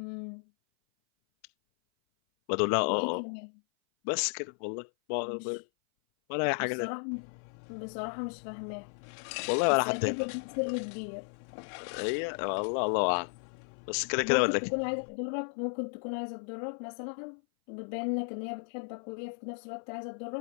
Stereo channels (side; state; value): right; silent; 55 dB below the other